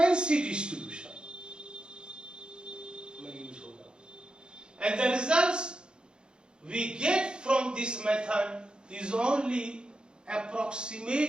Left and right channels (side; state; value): left; late; 0.050 ms